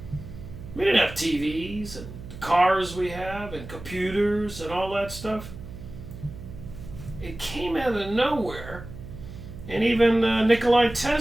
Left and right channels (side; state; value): right; noise; hum, 13 dB below the sound